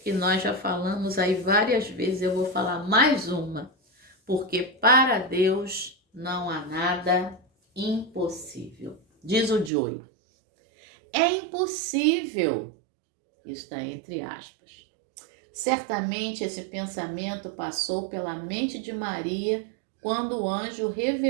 nós já falamos aí várias vezes, eu vou falar mais uma, porque para Deus não há nada impossível. Diz o Joey, é impossível, isso está entre aspas. Certamente esse pensamento passou pela mente de Maria quando o anjo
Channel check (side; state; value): left; drops out; at 9.7 s